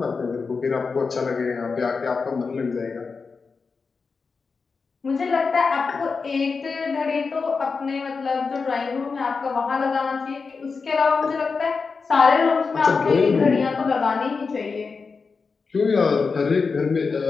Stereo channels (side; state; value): right; quieter; 4.8 dB